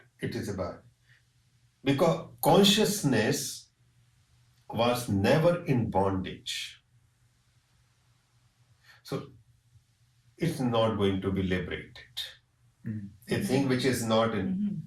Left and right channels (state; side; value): identical; both; correlation 1.00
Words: it is about, because consciousness was never in bondage, so it's not going to be liberated. A thing which is not